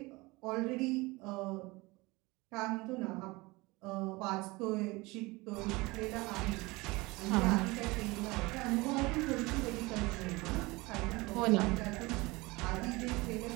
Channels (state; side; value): quieter; left; 23.0 dB